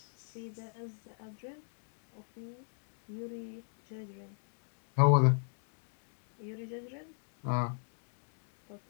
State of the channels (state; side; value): silent; right; digital silence